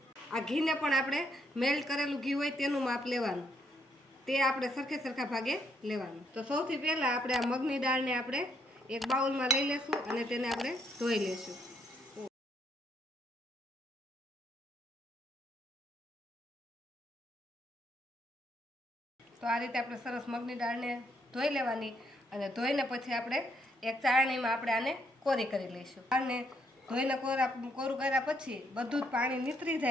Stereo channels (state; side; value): normal; both; correlation 0.73